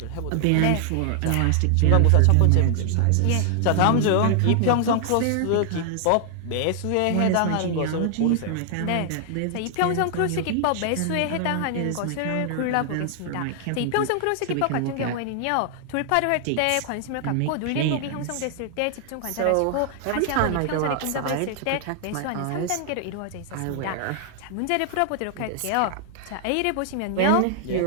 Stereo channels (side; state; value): both; different; correlation 0.00